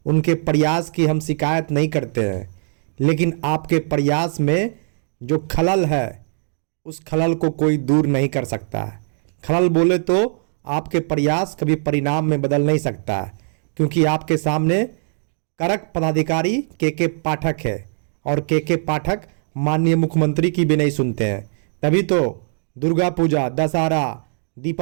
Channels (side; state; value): left; silent; digital silence